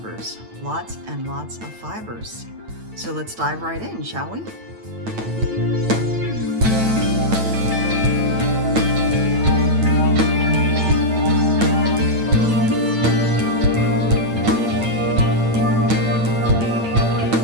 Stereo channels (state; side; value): late; left; 9.0 ms